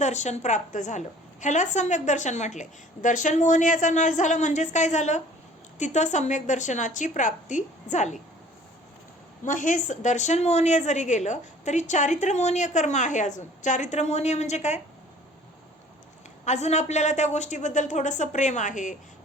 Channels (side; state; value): both; normal; correlation 0.51